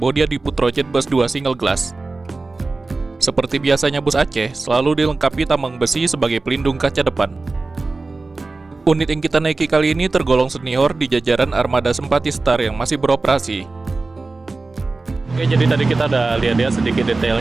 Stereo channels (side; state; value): left; quieter; 3.6 dB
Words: Adiput Rojet Bus 2 single glass. Seperti biasanya bus Aceh, selalu dilengkapi tameng besi sebagai pelindung kaca depan. Unit yang kita naiki kali ini tergolong senior di jajaran armada Sempati Star yang masih beroperasi. Oke, jadi tadi kita udah lihat sedikit